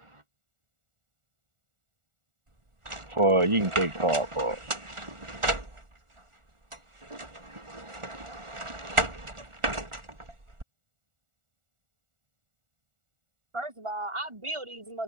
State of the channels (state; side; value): late; left; 1.4 ms